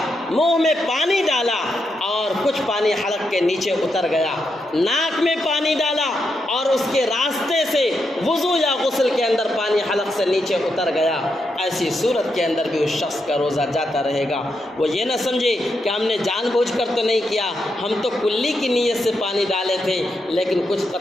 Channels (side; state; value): both; normal; correlation 0.83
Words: منہ میں پانی ڈالا اور کچھ پانی حلق کے نیچے اتر گیا، ناک میں پانی ڈالا اور اس کے راستے سے وضو یا غسل کے اندر پانی حلق سے نیچے اتر گیا، ایسی صورت کے اندر بھی اس شخص کا روزہ جاتا رہے گا۔ وہ یہ نہ سمجھے کہ ہم نے جان بوجھ کر تو نہیں کیا، ہم تو کلی کی نیت سے پانی ڈالے تھے لیکن کچھ